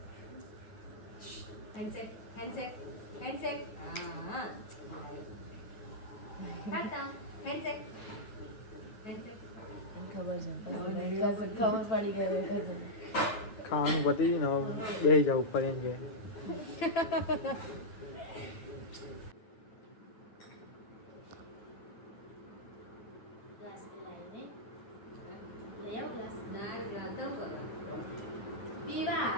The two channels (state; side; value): late; right; 9.3 ms